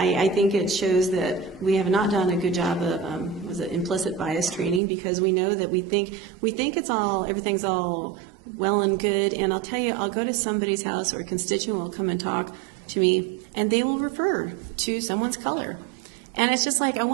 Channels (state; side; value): drops out; left; at 4.8 s